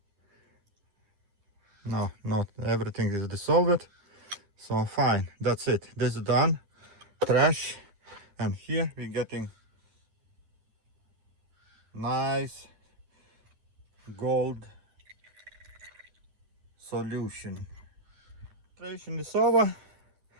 No, not everything is dissolved. So fine, that's it. This is done. Trash. And here we're getting nice gold solution. Filtration is over.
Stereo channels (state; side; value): late; left; 10 ms